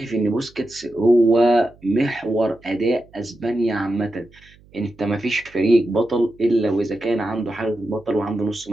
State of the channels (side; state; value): right; noise; hum, 27 dB below the sound